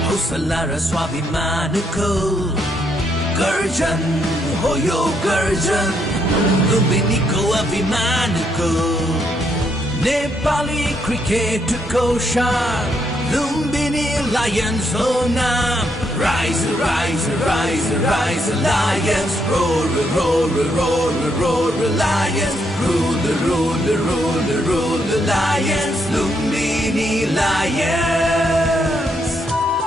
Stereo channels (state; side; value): normal; both; correlation 0.76